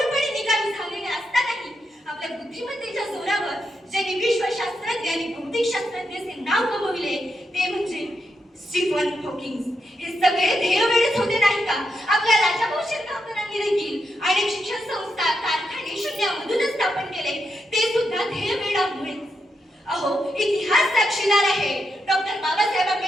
निकामी झालेले असतानाही आपल्या बुद्धिमत्तेच्या जोरावर ज्यांनी विश्वशास्त्रज्ञ आणि भौतिक शास्त्रज्ञाचे नाव कमविले ते म्हणजे स्टीफन हॉकिंग. हे सगळे ध्येयवेळेच होते नाही का? आपल्या राजाभाऊ शिरगावकरांनी देखील अनेक शिक्षण संस्था, कारखाने शून्यामधूनच स्थापन केले, ते सुद्धा ध्येयवेळामुळे. अहो, इतिहास साक्षीदार आहे. डॉक्टर बाबासाहेब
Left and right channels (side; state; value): both; normal; correlation 0.83